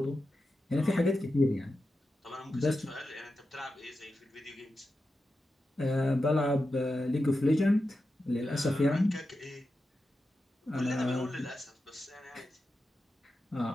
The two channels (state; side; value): normal; both; correlation 0.90